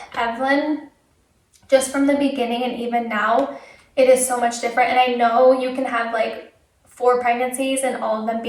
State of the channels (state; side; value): identical; both; correlation 1.00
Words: Evelyn, just from the beginning, and even now it is so much different. And I know you can have like 4 pregnancies and all of them